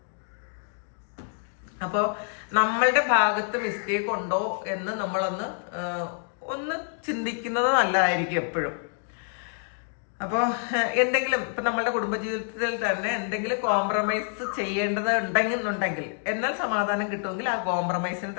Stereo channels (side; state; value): right; silent; 60 dB below the other